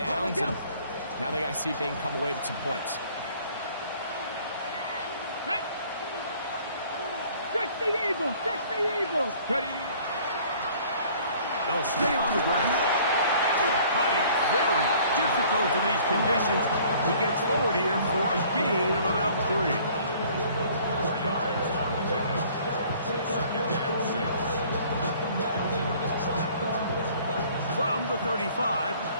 and now they got to see if they can come away with some points. Fix the Eagles! Fix the Eagles! Ready? They'll stay on the ground. Cutting very difficult in these conditions. He gets forward here for a gain of about 3. 4 yards on the pickup. Second and 6. From the 35,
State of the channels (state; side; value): inverted; both; correlation -0.54